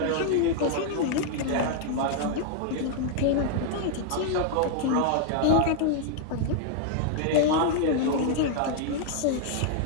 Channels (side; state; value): both; different; correlation 0.00